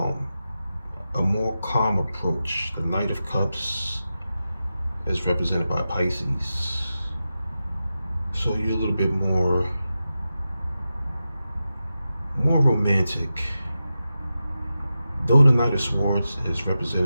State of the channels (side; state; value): both; inverted; correlation -0.92